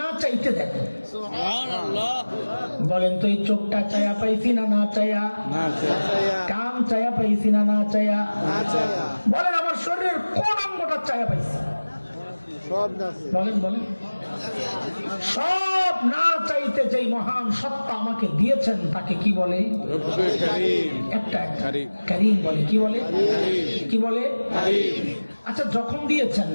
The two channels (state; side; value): inverted; both; correlation -1.00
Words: চাইতে দেন। সুবহানাল্লাহ। বলেন তো এই চোখটা চায়া পাইছি না না চায়া? না চায়া। কান চায়া পাইছি না না চায়া? না চায়া। বলেন আমার শরীরের কোন অঙ্গটা চায়া পাইছি? সব না। বলেন বলেন। সব না চাইতে যেই মহান সত্তা আমাকে দিয়েছেন তাকে কি বলে? রব্বে কারীম। একটা কারীম। করিম বলে। কি বলে? কি বলে? কারীম। আচ্ছা যখন দিয়েছেন